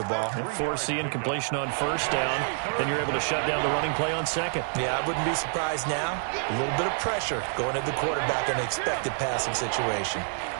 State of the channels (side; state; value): left; silent; 58 dB below the other